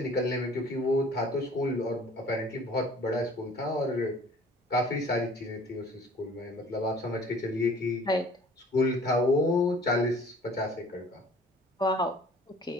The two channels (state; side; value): normal; both; correlation 0.51